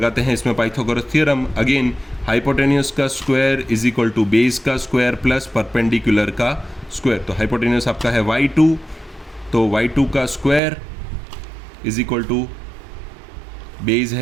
हैं इसमें पाइथागोरस थ्योरम। अगेन हाइपोटेन्यूस का square is equal to base का स्क्वायर प्लस परपेंडिकुलर का स्क्वायर। तो हाइपोटेन्यूस आपका है y2, तो y2 का square is equal to base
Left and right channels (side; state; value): left; drops out; at 10.6 s